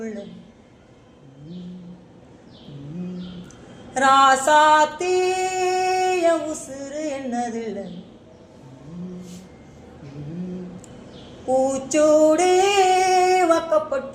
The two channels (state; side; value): identical; both; correlation 1.00